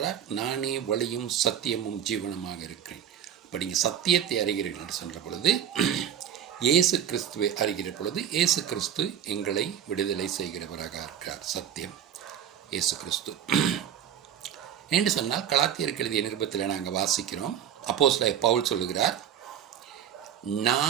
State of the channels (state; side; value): quieter; left; 9.7 dB